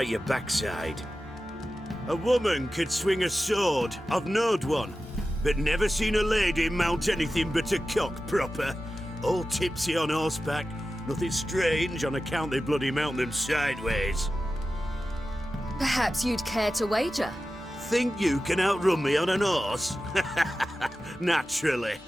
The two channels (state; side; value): normal; both; correlation 0.94